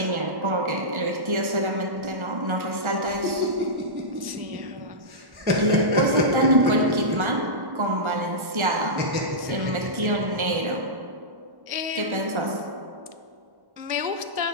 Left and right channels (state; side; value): late; left; 1.1 ms